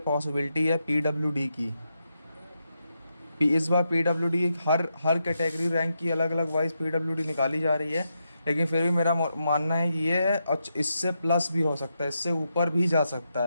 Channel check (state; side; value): inverted; both; correlation -0.84